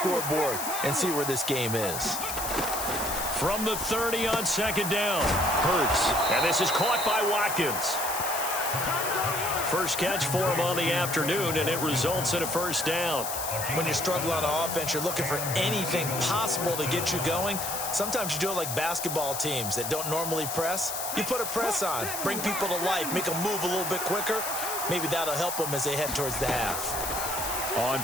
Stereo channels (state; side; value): noise; left; hiss, 4 dB below the sound